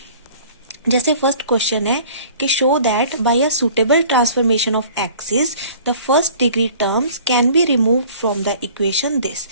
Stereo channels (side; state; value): both; inverted; correlation -0.49